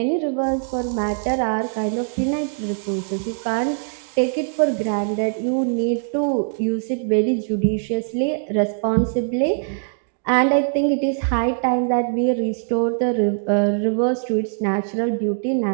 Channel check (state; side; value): silent; left; digital silence